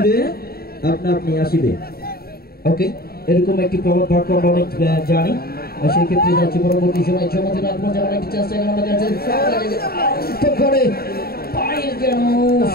আপনা আপনি আসবে। ওকে, এরকম একটি প্রবাদ বাক্য আমরা অনেক জানি। সেই ক্ষেত্রে যাচ্ছি পরবর্তী সময় চমৎকার আক্রমণ যেমন একটি চেষ্টা করে পায়ের যেন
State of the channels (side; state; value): right; late; 0.45 ms